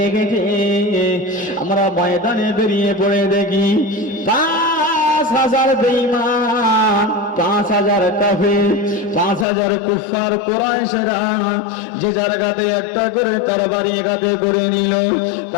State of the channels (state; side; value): drops out; right; at 9.5 s